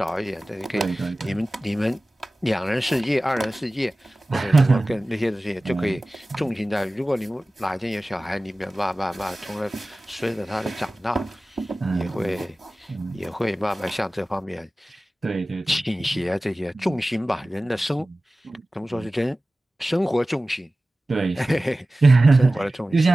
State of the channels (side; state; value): both; normal; correlation 0.97